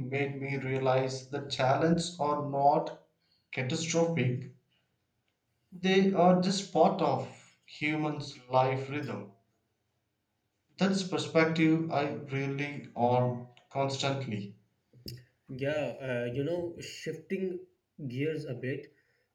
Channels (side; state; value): both; identical; correlation 1.00